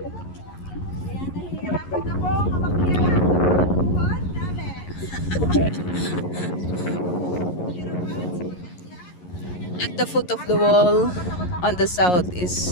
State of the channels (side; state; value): right; late; 11 ms